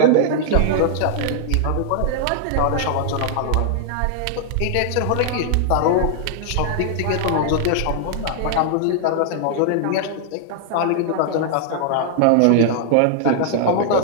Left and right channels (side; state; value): both; different; correlation -0.01